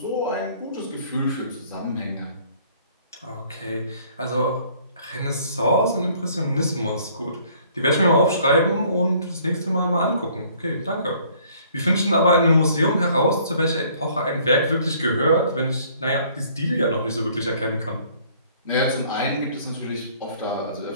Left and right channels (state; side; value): inverted; both; correlation -0.59